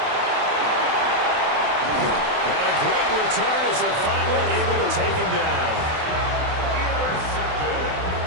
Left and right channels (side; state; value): left; late; 28 ms